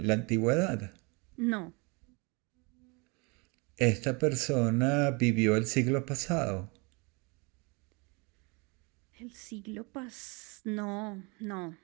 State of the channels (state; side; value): quieter; left; 29.5 dB